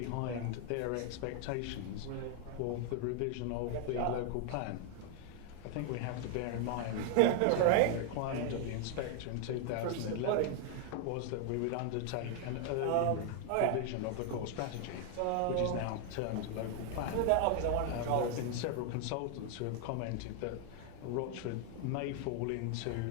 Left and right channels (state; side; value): different; both; correlation 0.00